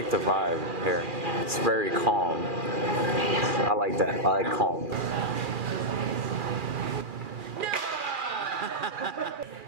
the vibe here. It's very calm. I like that. I like calm.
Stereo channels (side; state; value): left; late; 2.4 ms